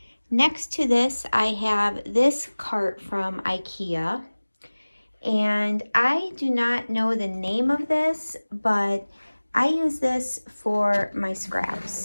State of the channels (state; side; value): inverted; both; correlation -1.00